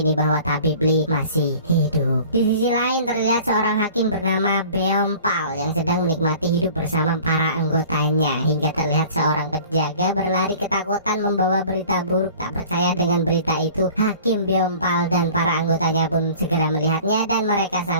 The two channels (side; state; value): both; inverted; correlation -0.46